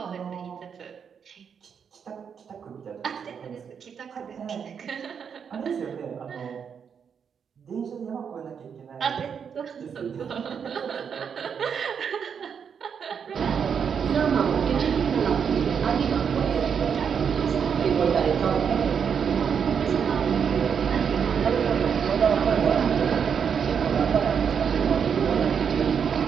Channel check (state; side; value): quieter; left; 7.1 dB